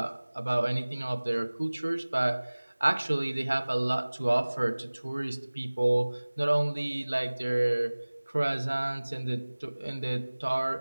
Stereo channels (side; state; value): both; inverted; correlation -1.00